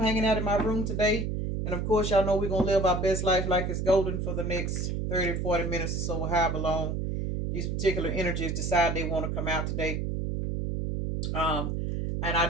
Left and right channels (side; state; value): right; noise; hum, 1 dB below the sound